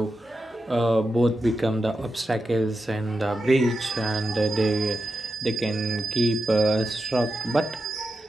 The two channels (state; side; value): normal; both; correlation 0.89